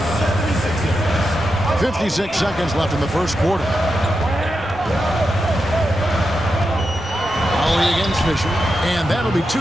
76ers. 56 seconds left in the first quarter. Ollie against Fisher, and that'll be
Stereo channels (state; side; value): normal; both; correlation 0.88